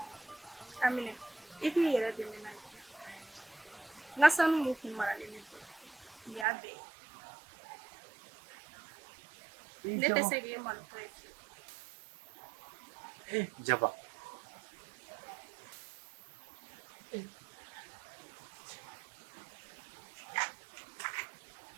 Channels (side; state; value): left; drops out; at 6.5 s